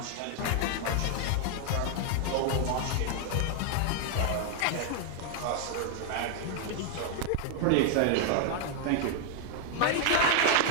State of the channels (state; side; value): different; both; correlation 0.00